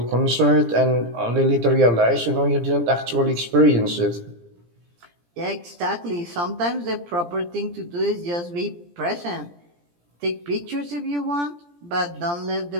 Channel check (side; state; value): left; late; 17 ms